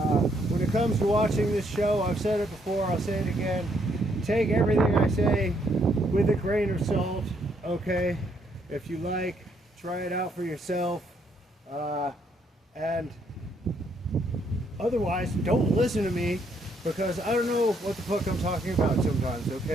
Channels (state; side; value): normal; both; correlation 0.71